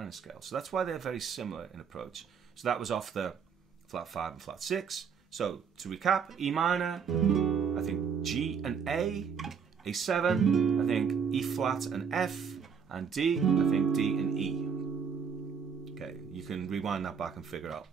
scale. So that's why they're very similar in approach. So that was off the flat 5 and flat 6. So to recap, E minor, I think G and A, A7, I think E flat and F, and D, I think D and E. Okay, you can rewind that back and figure out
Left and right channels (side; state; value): left; quieter; 6.6 dB